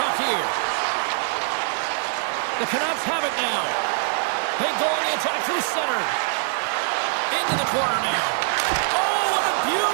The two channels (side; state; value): left; silent; digital silence